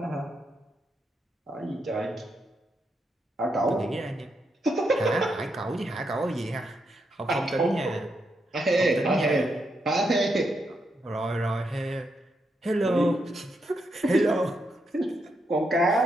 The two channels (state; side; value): normal; both; correlation 0.81